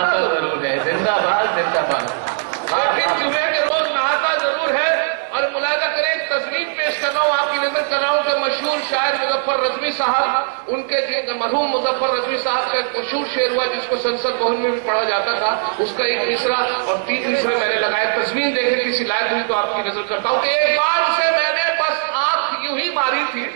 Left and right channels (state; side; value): silent; left; digital silence